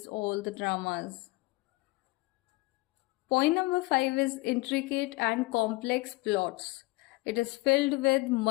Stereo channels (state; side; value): quieter; right; 22.8 dB